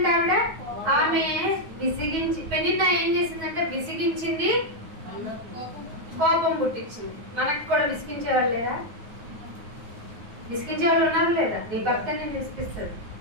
ఆమె విసిగించి, పెనిన్న ఏం చేసిందంటే విసిగించింది, కోపం పుట్టించింది. మనకు కూడా విసిగించే వాళ్ళు లేదా? విసిగించే వాళ్ళు ఉన్నారు లేదా? నీ భర్త నేను విసిగిస్తాడు,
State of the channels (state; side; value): late; left; 9.5 ms